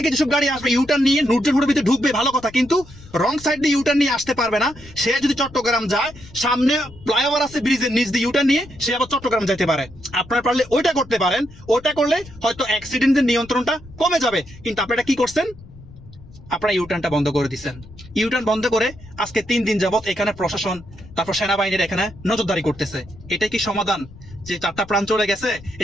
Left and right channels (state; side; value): noise; left; rumble, 20 dB below the sound